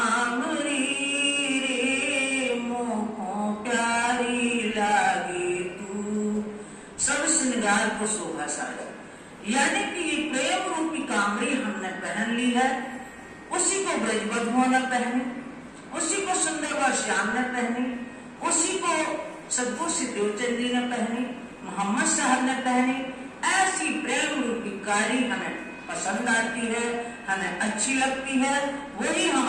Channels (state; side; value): identical; both; correlation 1.00